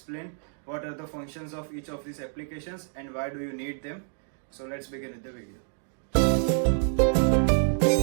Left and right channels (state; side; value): silent; left; 59 dB below the other